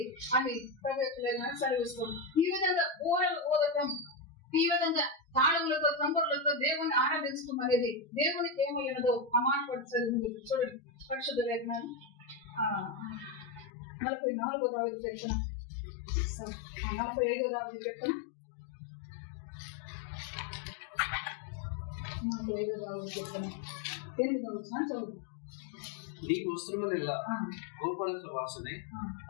అని ప్రభు యొక్క లేఖనం సెలవిస్తుంది. ఈ విధంగా ఊరలు ఊదటం, ఈ విధంగా తాళములతో, తంబురులతో దేవుని ఆరాధించడం అనేది దేవునికి ఏమైనదో ఆ మాట పడుతుంది. చూడండి, పరిశుద్ధ లేఖనాలు 44వ దావీదు కీర్తన, 45వ దావీదు కీర్తన, 45వ దావీదు కీర్తన 8వ వచనం చదువు. నీ వస్త్రములెల్లా గోపరస వాసనే,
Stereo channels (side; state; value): right; drops out; at 13.7 s